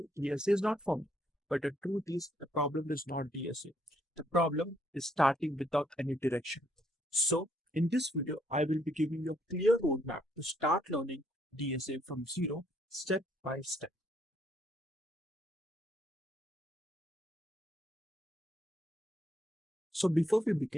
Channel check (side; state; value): both; normal; correlation 0.71